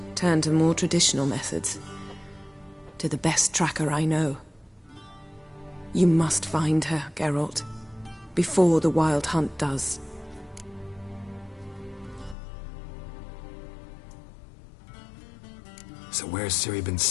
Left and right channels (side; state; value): right; drops out; at 12.4 s